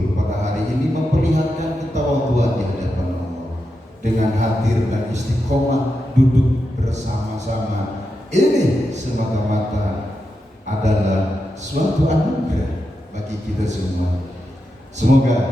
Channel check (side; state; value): both; normal; correlation 0.88